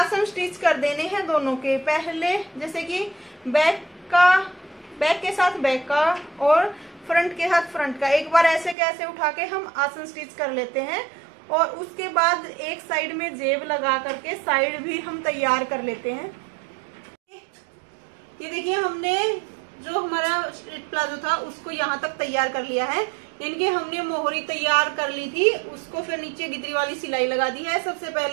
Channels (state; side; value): drops out; left; at 8.8 s